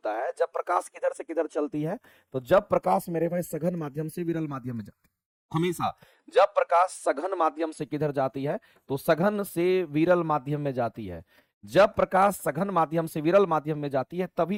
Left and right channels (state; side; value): identical; both; correlation 1.00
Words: है? जब प्रकाश किधर से किधर चलती है। तो जब प्रकाश मेरे भाई सघन माध्यम से विरल माध्यम में जाती है। हमेशा जब प्रकाश सघन माध्यम से किधर जाती है? तो सघन से विरल माध्यम में जाती है। जब प्रकाश सघन माध्यम से विरल माध्यम में जाती है